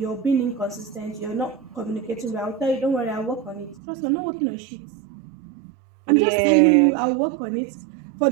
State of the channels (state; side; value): drops out; left; at 3.8 s